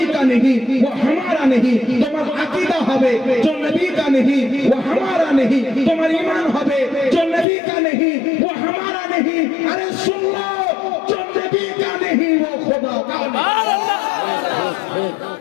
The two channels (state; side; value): drops out; right; at 7.5 s